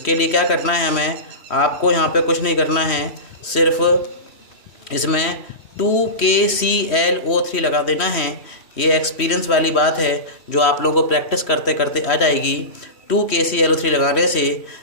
लिए क्या करना है, हमें आपको यहाँ पे कुछ नहीं करना है, सिर्फ इसमें 2KClO3 लगा देना है। ये एक्सपीरियंस वाली बात है जो आप लोगों को प्रैक्टिस करते करते आ जाएगी। 2KClO3 लगाने से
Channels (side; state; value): right; late; 3.1 ms